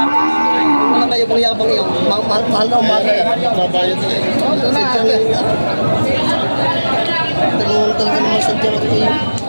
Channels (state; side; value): inverted; both; correlation -1.00